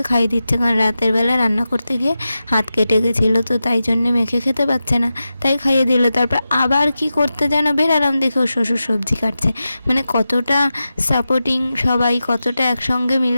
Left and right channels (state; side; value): inverted; both; correlation -0.92